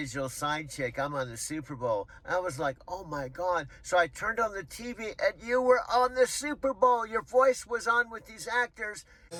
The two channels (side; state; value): both; identical; correlation 1.00